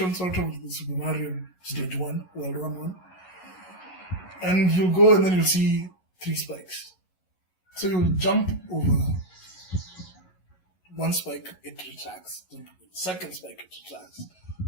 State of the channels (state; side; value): late; right; 11 ms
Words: sort of the Super Mario Stage 1, World 1. And you'll go and then you'll see 3 spikes. So you'll jump over one spike, it retracts. Jump over the second spike, it retracts.